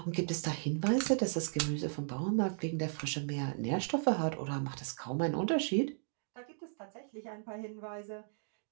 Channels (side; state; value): left; silent; digital silence